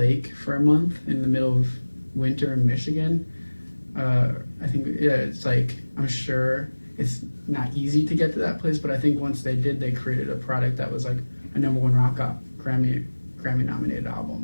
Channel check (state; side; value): inverted; both; correlation -1.00